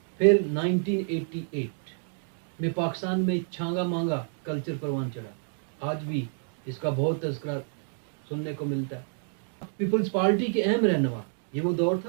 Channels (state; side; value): silent; left; 59 dB below the other